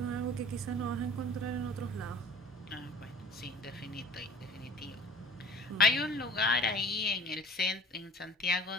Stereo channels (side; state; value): both; normal; correlation 0.46